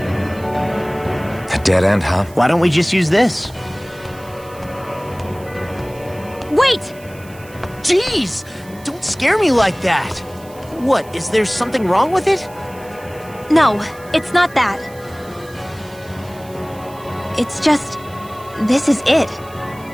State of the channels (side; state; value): right; noise; hiss, 23 dB below the sound